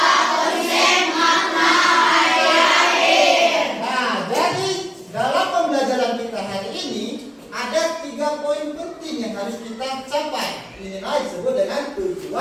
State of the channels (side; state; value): both; identical; correlation 1.00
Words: konsep makna hari-hari. Nah, jadi dalam pembelajaran kita hari ini ada 3 poin penting yang harus kita capai. Inilah disebut dengan